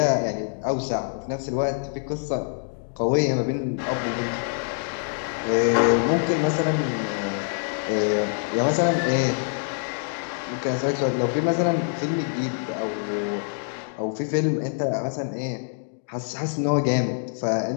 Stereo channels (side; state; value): right; silent; digital silence